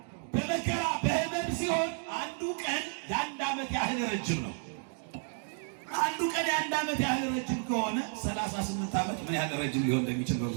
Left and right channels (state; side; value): silent; left; 56 dB below the other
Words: በመከራ በህመም ሲሆን አንዱ ቀን የ1 ዓመት ያህል ረጅም ነው። አንዱ ቀን የ1 ዓመት ያህል ረጅም ከሆነ 38 ዓመት ምን ያህል ረጅም ሊሆን እንደሚችል